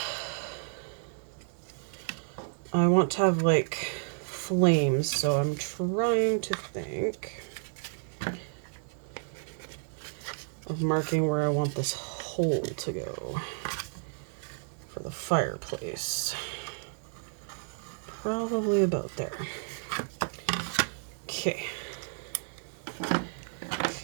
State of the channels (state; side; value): silent; left; digital silence